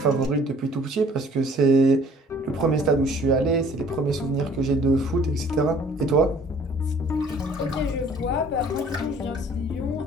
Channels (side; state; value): both; normal; correlation 0.55